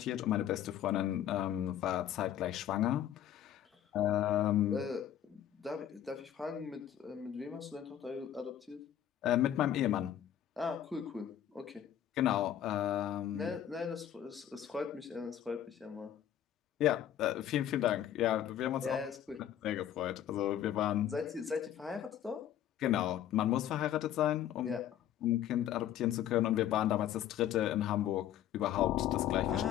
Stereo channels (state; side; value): quieter; right; 10.8 dB